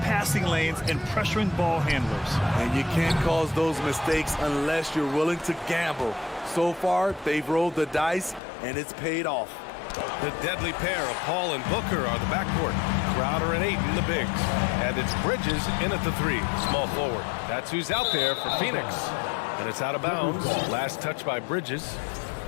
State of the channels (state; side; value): drops out; right; at 8.4 s